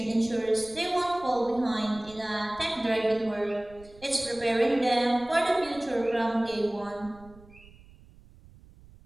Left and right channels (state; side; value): noise; right; rumble, 23 dB below the sound